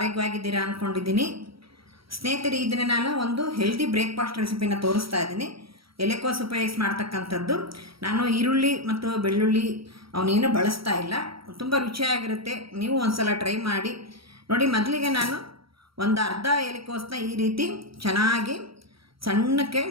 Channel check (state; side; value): late; left; 0.75 ms